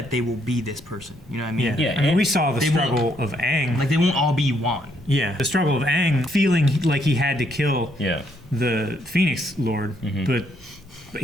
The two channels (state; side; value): normal; both; correlation 0.72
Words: they will be this person. You know what I mean? I mean, we saw the struggle of Aang. Like they won't all be Juan. Yeah, the struggle of Aang feeling like he had to kill the Phoenix Lord, but